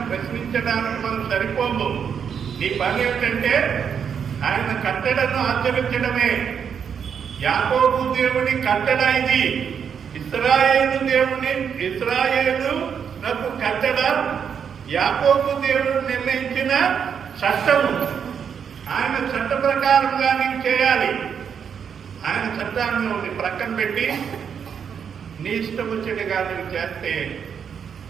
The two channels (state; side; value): quieter; left; 7.4 dB